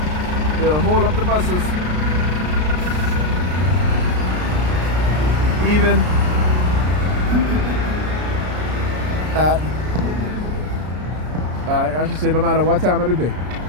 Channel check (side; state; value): left; late; 33 ms